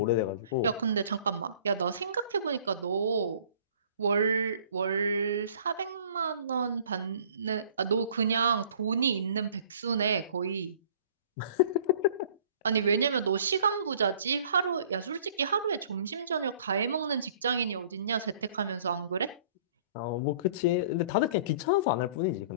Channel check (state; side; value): inverted; both; correlation -0.52